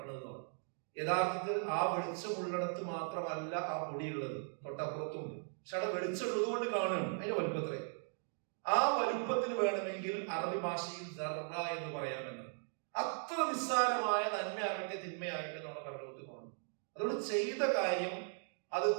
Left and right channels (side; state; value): left; silent; 52 dB below the other